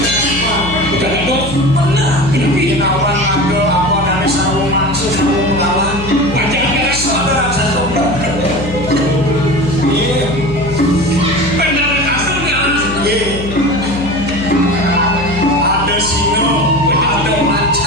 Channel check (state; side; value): noise; left; hum, 10 dB below the sound